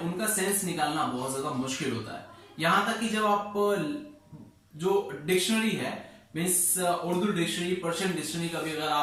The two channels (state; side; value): identical; both; correlation 1.00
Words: उनका सेंस निकालना बहुत ज्यादा मुश्किल होता है। यहां तक कि जब आप जो डिक्शनरी है means Urdu dictionary, Persian dictionary का भी अगर